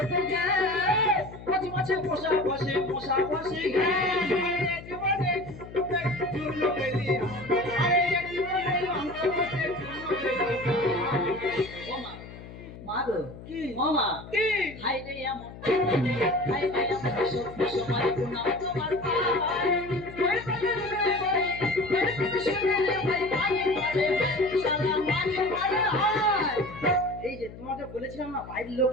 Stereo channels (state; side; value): noise; left; hum, 15 dB below the sound